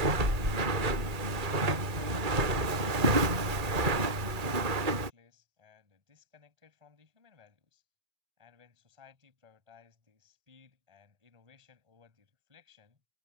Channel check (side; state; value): left; late; 1.8 ms